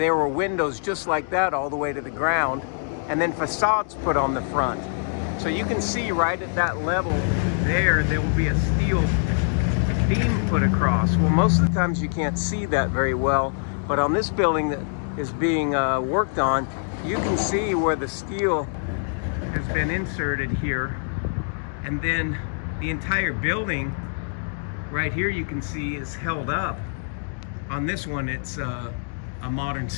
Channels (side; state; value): right; silent; digital silence